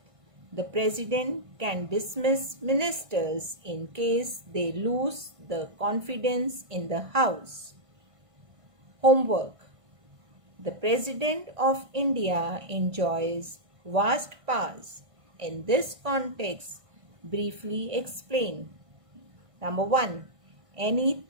the President can dismiss ministers in case they lose the confidence in the House. Homework. The President of India enjoys vast powers. In this context, briefly explain. Number 1. Any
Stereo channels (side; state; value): left; late; 1.5 ms